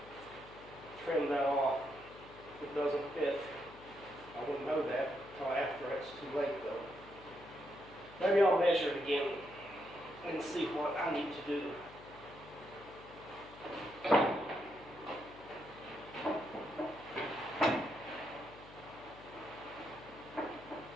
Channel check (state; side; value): noise; left; hum, 19 dB below the sound